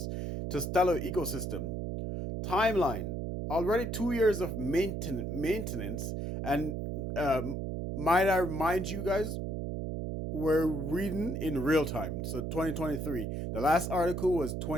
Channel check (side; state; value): right; noise; hum, 3 dB below the sound